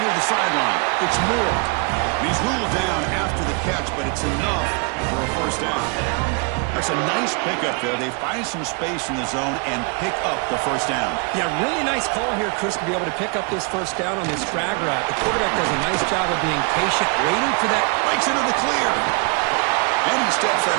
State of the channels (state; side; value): quieter; left; 34.9 dB